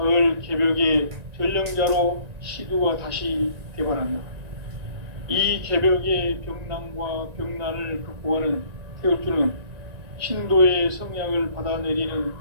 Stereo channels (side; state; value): left; late; 1.9 ms